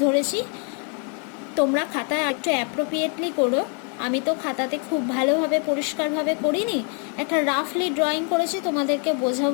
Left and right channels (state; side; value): quieter; right; 39.2 dB